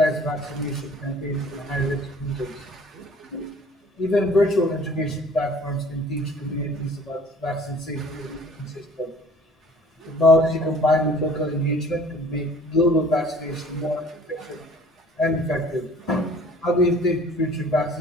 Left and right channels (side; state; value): both; normal; correlation 0.51